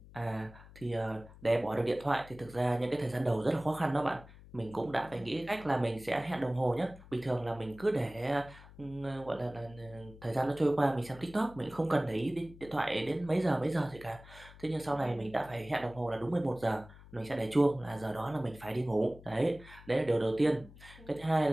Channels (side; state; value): left; noise; hum, 20 dB below the sound